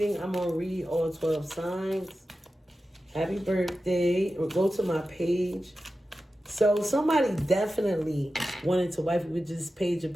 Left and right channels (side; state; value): both; normal; correlation 0.93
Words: I'm going to read all 12 signs. Happy birthday. Or go to my page. So somebody definitely wanted to wife you with this Page of